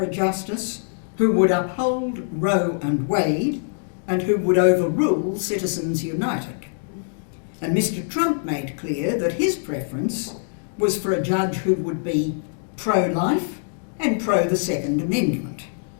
justice who would uphold Roe and Wade and who would overrule Citizens United. And Mr. Trump made clear that his preference was for a judge who would be pro-life and pro the Second Amendment.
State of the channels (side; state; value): right; silent; digital silence